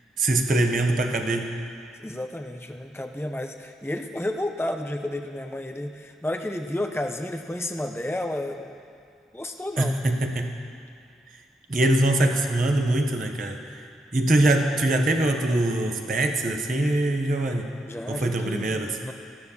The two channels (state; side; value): normal; both; correlation 0.82